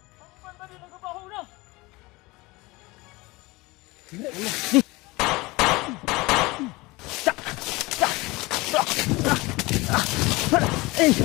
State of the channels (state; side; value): quieter; right; 22.6 dB